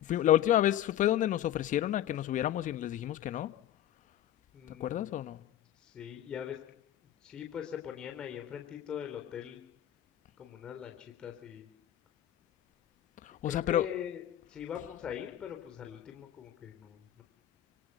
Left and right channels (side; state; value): right; quieter; 11.8 dB